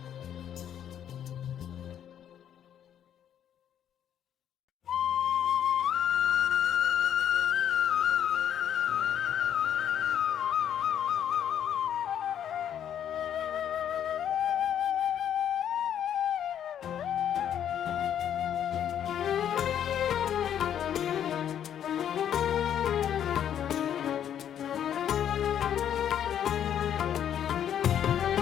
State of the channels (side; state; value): right; quieter; 9.7 dB